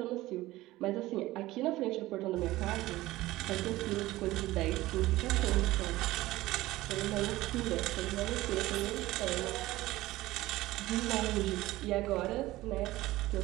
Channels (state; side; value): quieter; left; 17.5 dB